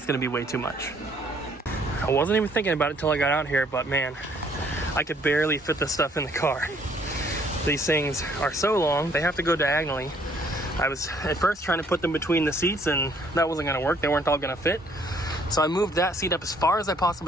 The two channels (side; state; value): both; normal; correlation 0.63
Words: going to be way too much. I wasn't even thinking about it till I got out here, but man, I could barely fit this stuff in the car. These things are so long, they have to go diagonally. I was at first trying to put them between the seats, and that wasn't going to work. They weren't all going to fit. So I moved that seat up as far as I